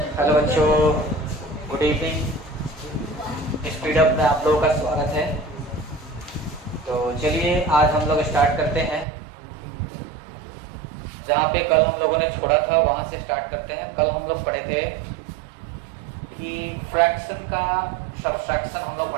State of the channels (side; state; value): left; drops out; at 9.1 s